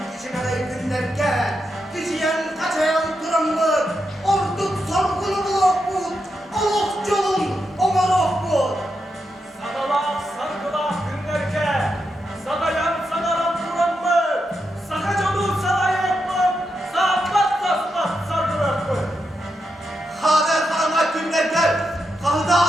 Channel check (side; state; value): both; normal; correlation 0.85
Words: için aday günlerge, kişiyen kaçayan duranlık, orduk sorgulu bulokbut, oluk yolun omarokbut. Sadalak sargılak günlerke, sadayan sadaran duran mı? Sakacolu sadayak mı? Sağpat saspat sargırak mı? Haber karanlık günler gel. Kahıda